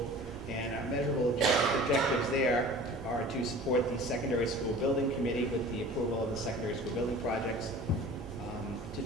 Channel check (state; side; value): normal; both; correlation 0.42